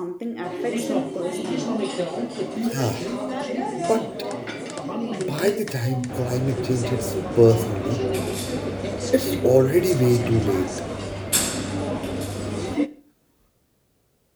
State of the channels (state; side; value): identical; both; correlation 1.00